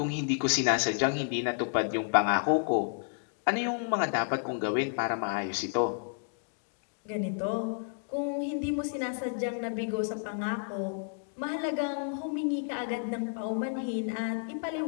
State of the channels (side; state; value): right; silent; digital silence